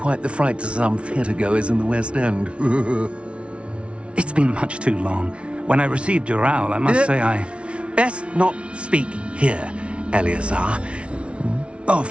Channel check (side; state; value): left; late; 0.060 ms